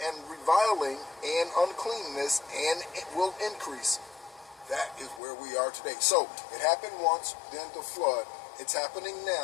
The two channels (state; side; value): drops out; right; at 5.2 s